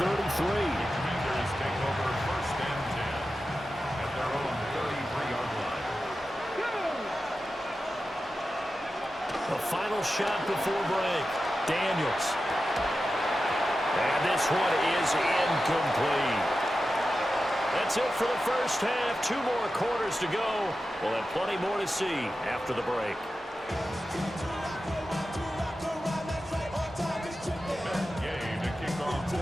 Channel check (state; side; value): normal; both; correlation 0.92